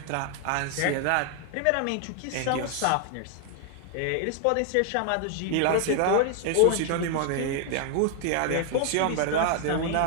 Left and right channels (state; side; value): different; both; correlation 0.00